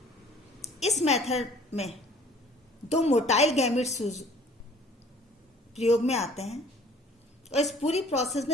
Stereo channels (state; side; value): normal; both; correlation 0.52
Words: इस मेथड में 2 मोटाइल गैमेट्स प्रयोग में आते हैं और इस पूरी प्रोसेस